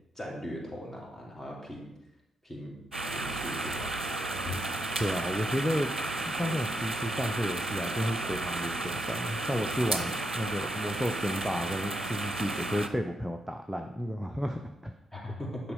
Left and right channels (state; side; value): normal; both; correlation 0.82